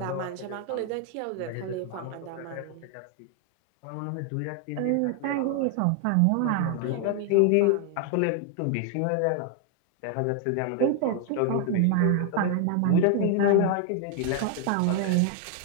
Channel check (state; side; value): different; both; correlation 0.00